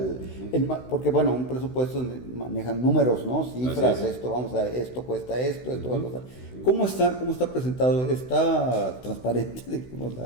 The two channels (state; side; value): late; right; 16 ms